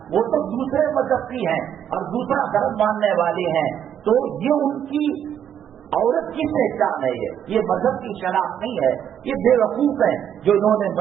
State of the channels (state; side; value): quieter; left; 9.4 dB